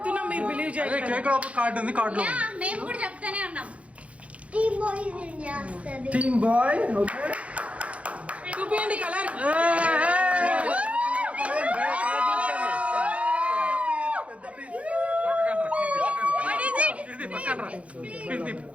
మీరు బిలీవ్ చేయండి. కేక్ లో కార్డు ఉంది. కార్డు లో మేము కూడా చెప్తానే ఉన్నాం. టీమ్ బాయ్. ఓకే చూపియండి కలర్.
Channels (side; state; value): left; late; 0.064 ms